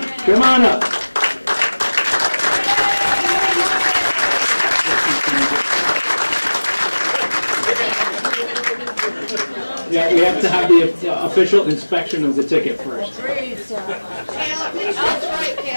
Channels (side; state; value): both; inverted; correlation -1.00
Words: Come on up. Yeah, we have to have the official inspection of the ticket first. Caleb, that's right,